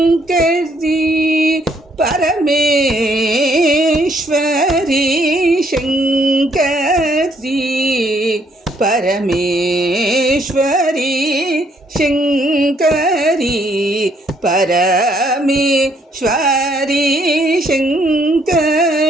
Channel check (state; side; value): normal; both; correlation 0.68